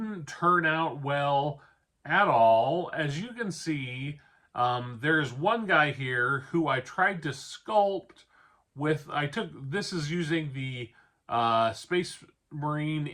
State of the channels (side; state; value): both; identical; correlation 1.00